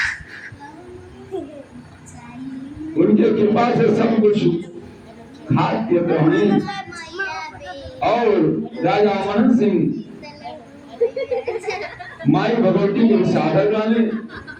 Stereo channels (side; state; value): both; identical; correlation 1.00